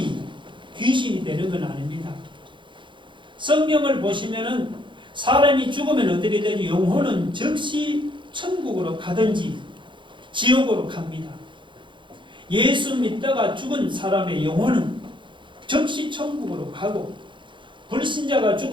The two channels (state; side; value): late; left; 0.23 ms